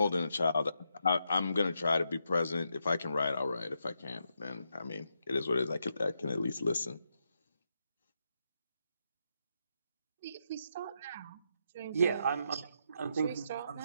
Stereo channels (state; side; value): inverted; both; correlation -0.82